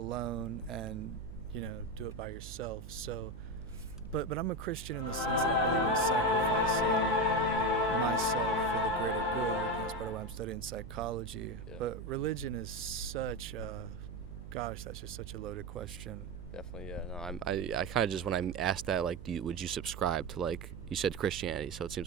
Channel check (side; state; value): right; noise; hum, 11 dB below the sound